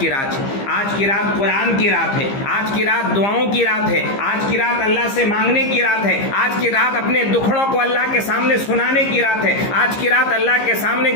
رات ہے، آج کی رات قرآن کی رات ہے، آج کی رات دعاؤں کی رات ہے، آج کی رات اللہ سے مانگنے کی رات ہے، آج کی رات اپنے دکھڑوں کو اللہ کے سامنے سنانے کی رات ہے، آج کی رات اللہ کے سامنے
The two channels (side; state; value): right; late; 15 ms